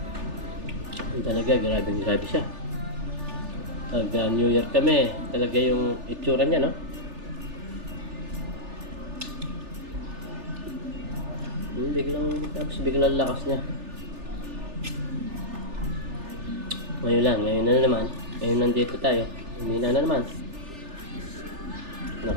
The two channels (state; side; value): late; left; 3.4 ms